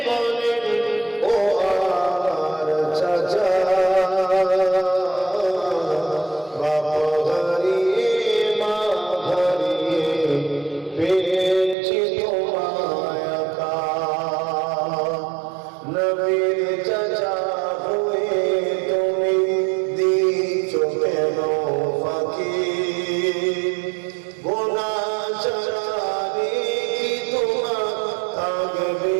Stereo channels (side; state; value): left; drops out; at 11.8 s